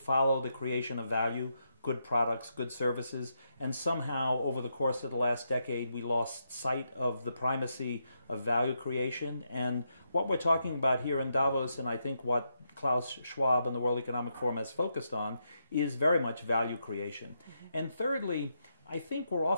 the creation of value, good products, good services, and somehow over the course of the last decade we lost sight of the primacy of value creation. And what we're talking about here in Davos, and I think what Klaus Schwab and the World Economic Forum has focused on, is very much value creation. And thirdly, I think we're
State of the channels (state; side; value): inverted; both; correlation -0.81